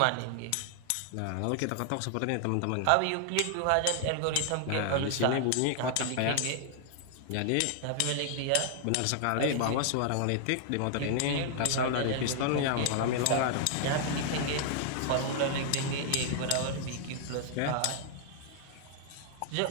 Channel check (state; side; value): different; both; correlation 0.00